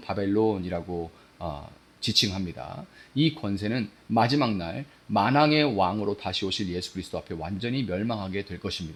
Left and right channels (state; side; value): identical; both; correlation 1.00